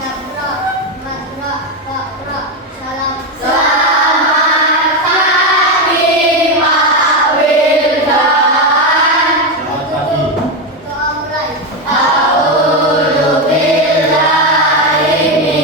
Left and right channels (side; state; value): both; normal; correlation 0.11